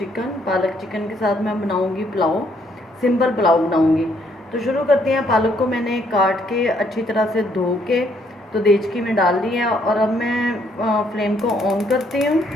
पालक चिकन के साथ मैं बनाऊंगी पुलाव, सिंपल पुलाव बनाऊंगी। तो शुरू करते हैं। पालक को मैंने काट के अच्छी तरह से धो के तो देचकी में डाल दिया, और अब मैं फ्लेम को ऑन करती हूँ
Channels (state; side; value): normal; both; correlation 0.69